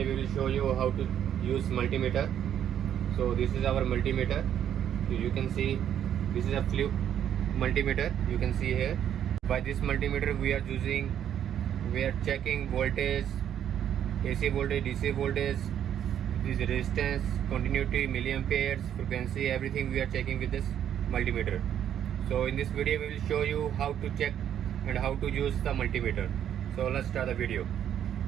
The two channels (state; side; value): quieter; left; 9.8 dB